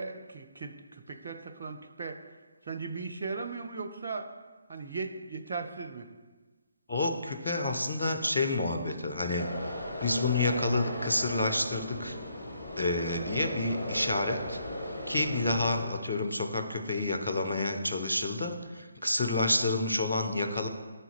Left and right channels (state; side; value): inverted; both; correlation -0.71